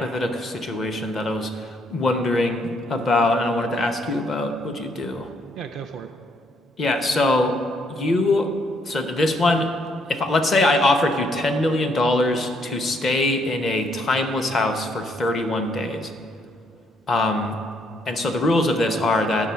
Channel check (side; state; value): both; normal; correlation 0.71